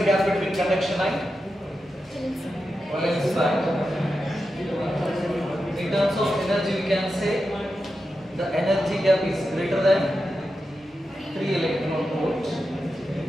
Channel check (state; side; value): normal; both; correlation 0.89